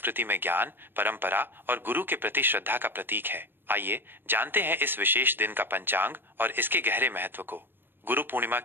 में ज्ञान, परंपरा और गुरु के प्रति श्रद्धा का प्रतीक है। आइए जानते हैं इस विशेष दिन का पंचांग और इसके गहरे महत्व को। गुरु पूर्णिमा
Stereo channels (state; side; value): late; left; 0.098 ms